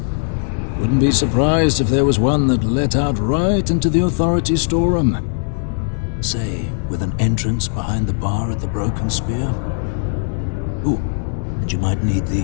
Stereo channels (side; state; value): right; silent; 66 dB below the other